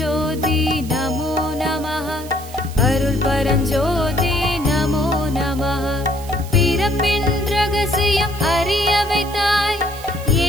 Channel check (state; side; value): noise; right; hiss, 17 dB below the sound